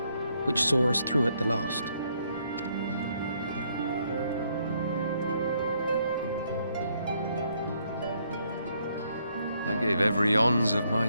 which saw us through at the last. I gave every ounce of my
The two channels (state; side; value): inverted; both; correlation -0.72